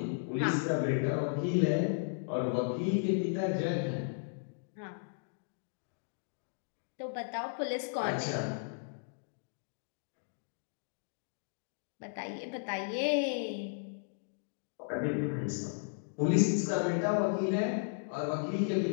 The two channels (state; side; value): silent; right; digital silence